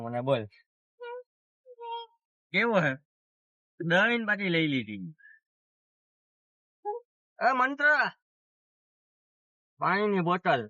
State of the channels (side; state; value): both; identical; correlation 1.00